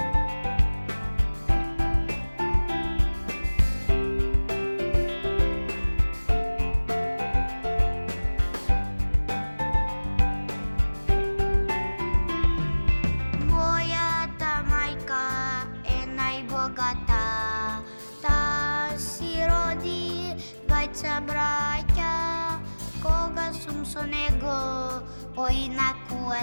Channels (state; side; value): inverted; both; correlation -1.00